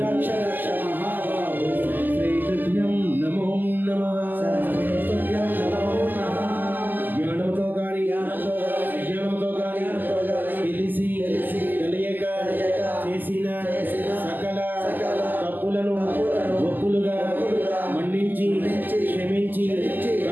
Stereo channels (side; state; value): left; late; 0.087 ms